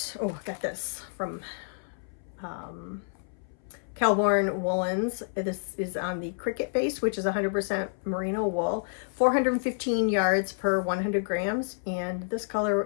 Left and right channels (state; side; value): silent; right; 59 dB below the other